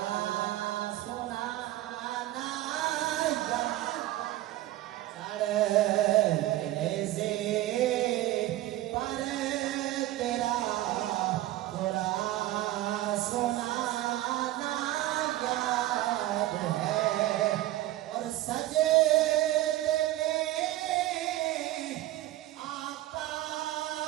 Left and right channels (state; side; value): quieter; left; 15.6 dB